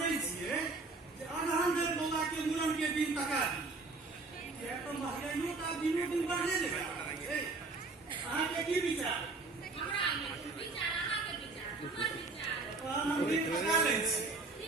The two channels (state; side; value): quieter; left; 3.7 dB